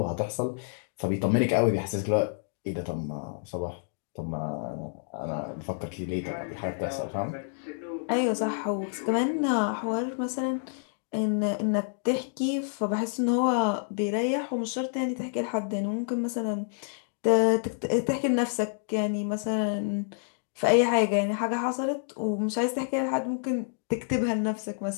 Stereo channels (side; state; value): right; silent; digital silence